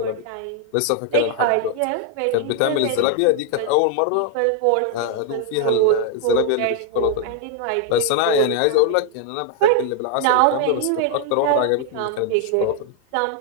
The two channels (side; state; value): both; different; correlation 0.00